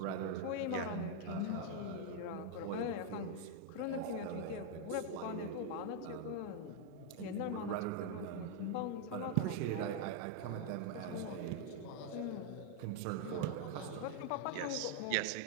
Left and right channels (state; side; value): different; both; correlation 0.00